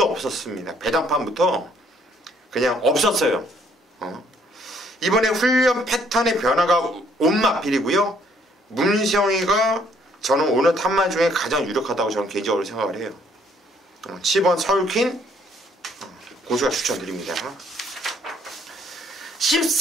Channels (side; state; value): both; normal; correlation 0.65